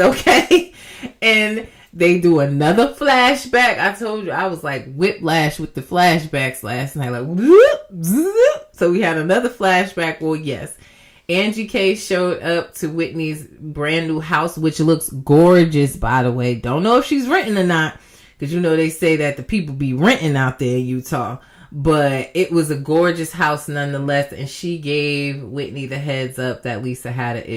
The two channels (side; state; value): both; identical; correlation 1.00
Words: And they do another flashback. I told you, I was like whiplash with the flashbacks last night. Like, whoop, zoop. So we had another flashback. Well, yes. Angie K showed up to Whitney's brand new house, which looks gorgeous, by the way. Don't know if she's renting or not, because you know they say that the people be renting out there in Utah. But it was a gorgeous house nonetheless, and she gave Whitney the heads up that Lisa had an